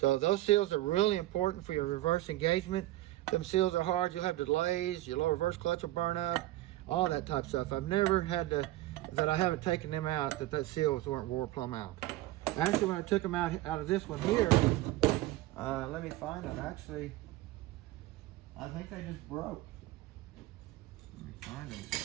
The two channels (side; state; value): left; quieter; 16.6 dB